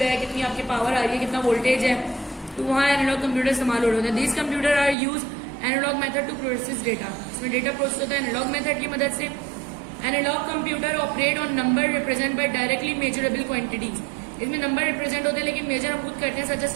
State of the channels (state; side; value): drops out; left; at 5.0 s